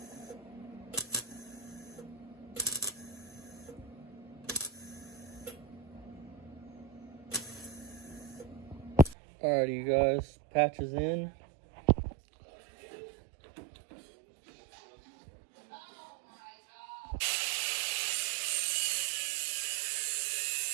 Alrighty, you guys, patches in.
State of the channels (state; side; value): drops out; left; at 9.2 s